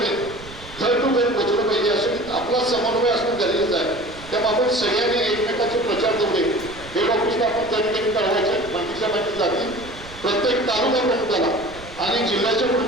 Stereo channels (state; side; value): noise; right; rumble, 17 dB below the sound